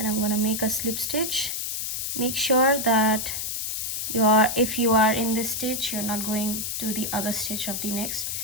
I'm gonna make a slip stitch. Make sure that if you are in this stitch, you're not going to the other stitch of the next.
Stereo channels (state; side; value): noise; left; hiss, 3 dB below the sound